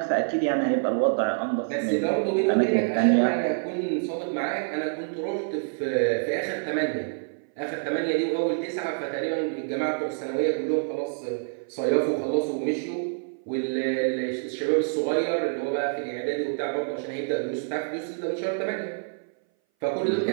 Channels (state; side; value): silent; left; 59 dB below the other